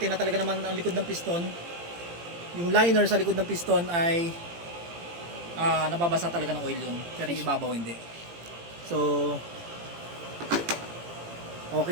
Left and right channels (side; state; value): left; late; 18 ms